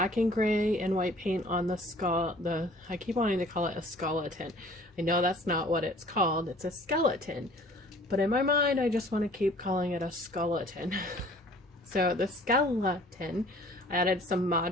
and gray and white paint on the skull. I keep wanting to call it a skeleton. I know that's not what it's called. It's a skeleton. But in my mind, I just want to keep calling it a skeleton. So the skeleton, I added some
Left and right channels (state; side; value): normal; both; correlation 0.51